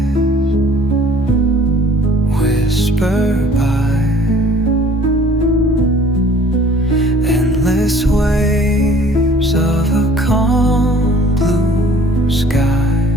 whisper by, endless waves of a calm blue sky,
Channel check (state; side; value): normal; both; correlation 0.52